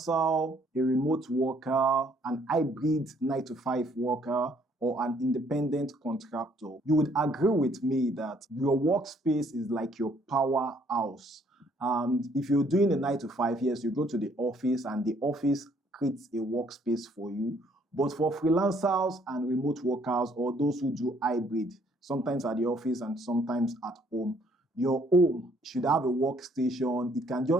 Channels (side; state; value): both; normal; correlation 0.65